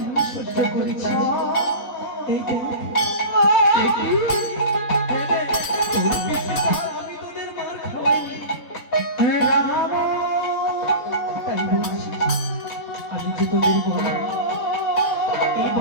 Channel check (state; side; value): late; right; 3.8 ms